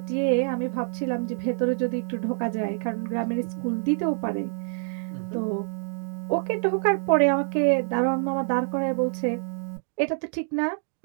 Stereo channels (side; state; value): left; silent; digital silence